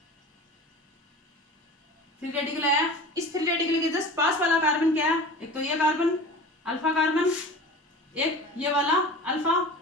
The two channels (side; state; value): both; normal; correlation 0.36